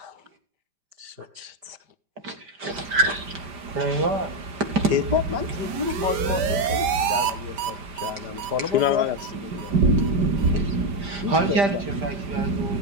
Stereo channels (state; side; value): late; left; 5.0 ms